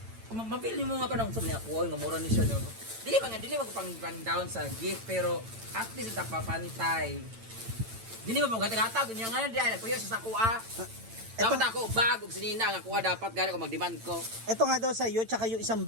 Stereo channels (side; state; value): left; late; 8.9 ms